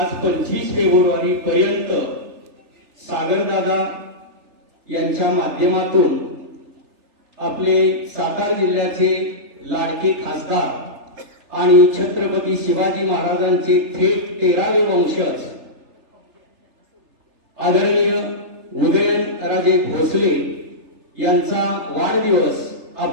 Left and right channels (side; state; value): left; late; 3.4 ms